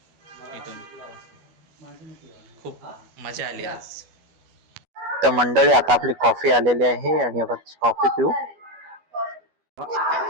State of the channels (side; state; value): left; late; 12 ms